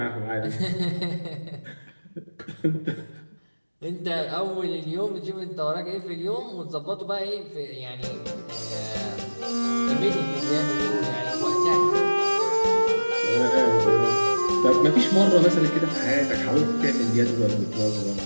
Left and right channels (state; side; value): inverted; both; correlation -1.00